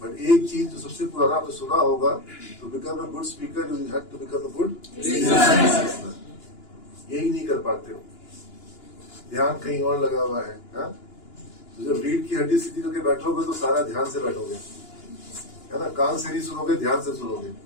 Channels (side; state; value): right; late; 2.9 ms